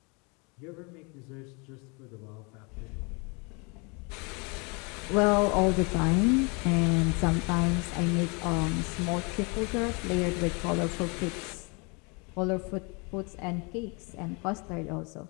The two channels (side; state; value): right; quieter; 31.3 dB